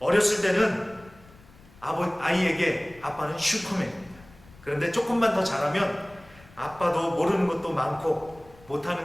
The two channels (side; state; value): left; noise; rumble, 24 dB below the sound